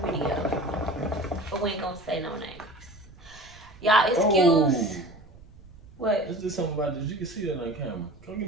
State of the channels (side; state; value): right; noise; rumble, 24 dB below the sound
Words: but we ain't gonna say no names. Y'all excuse. Oh. What? Let's do something about this. You can see that on camera. Come give